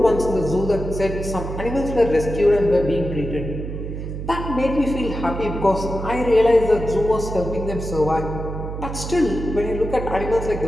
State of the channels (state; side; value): noise; right; hum, 6 dB below the sound